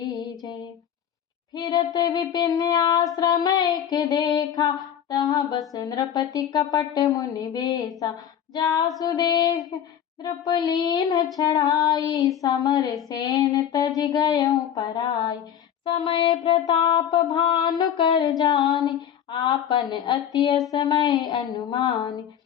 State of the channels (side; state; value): right; quieter; 9.4 dB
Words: जय। फिरत विपिन आश्रम एक देखा, तहाँ बस नृपति कपट मुनि बेसा। जासु देख नृपलीन छड़ाई, समर सेन तज गयऊ पराई। समय प्रताप भानु कर जानी, आपन अति असमय अनुमानी।